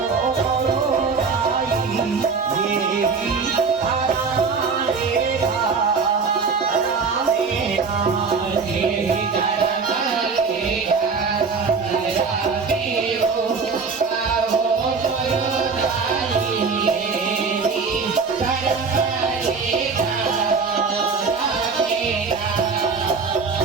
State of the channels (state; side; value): quieter; left; 5.0 dB